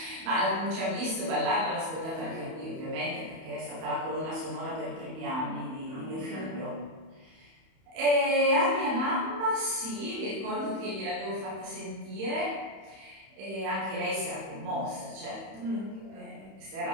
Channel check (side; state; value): left; late; 31 ms